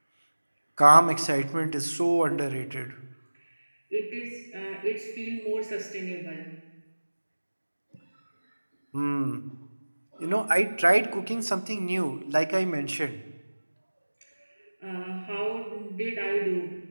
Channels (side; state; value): both; inverted; correlation -1.00